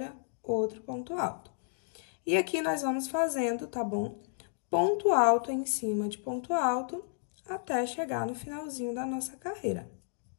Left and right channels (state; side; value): silent; right; digital silence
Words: outro ponto alto. E aqui nós vamos fazendo, tá bom? Ponto alto em cima de ponto alto, até chegar no finalzinho da nossa carreira.